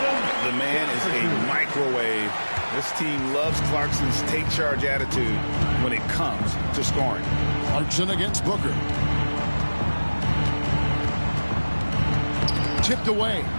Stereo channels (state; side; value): inverted; both; correlation -1.00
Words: man is a microwave This team loves Clarkson's take charge attitude when it comes to scoring. Clarkson against Booker. Tipped away.